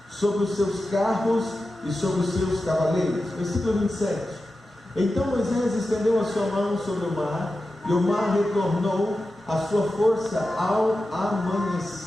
sobre os seus carros e sobre os seus cavaleiros. Versículo 27. Então Moisés estendeu a sua mão sobre o mar, e o mar retornou a sua força ao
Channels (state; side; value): normal; both; correlation 0.92